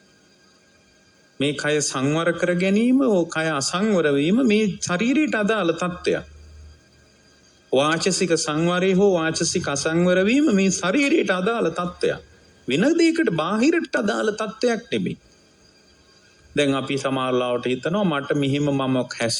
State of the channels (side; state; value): both; identical; correlation 1.00